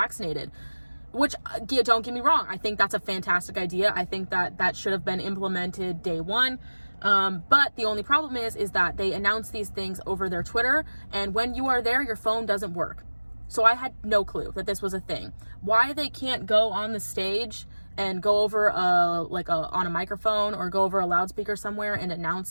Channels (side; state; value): both; inverted; correlation -1.00